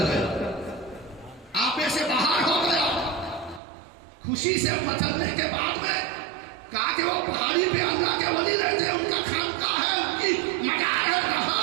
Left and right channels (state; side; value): drops out; left; at 3.6 s